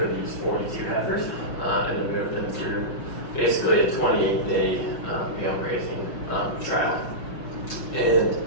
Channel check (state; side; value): late; right; 5.8 ms